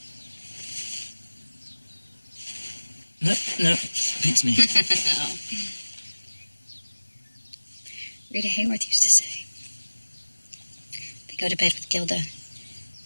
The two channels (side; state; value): both; inverted; correlation -1.00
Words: No, beats me. Oh. Rita Hayworth used to say, they go to bed with Gilda.